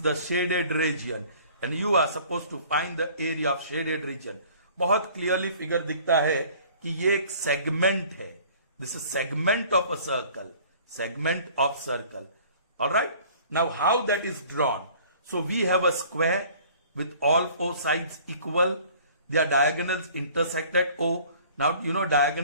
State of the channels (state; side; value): inverted; both; correlation -0.51